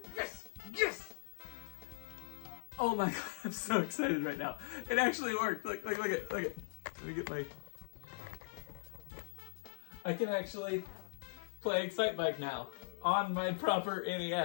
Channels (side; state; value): right; silent; 51 dB below the other